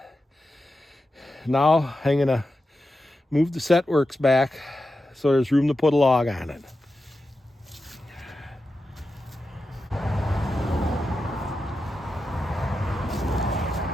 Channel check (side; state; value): both; normal; correlation 0.90